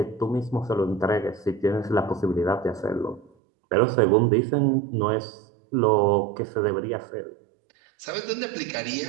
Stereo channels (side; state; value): left; drops out; at 3.3 s